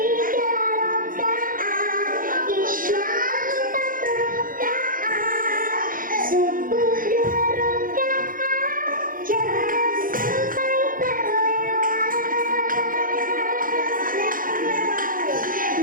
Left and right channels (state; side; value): late; left; 0.40 ms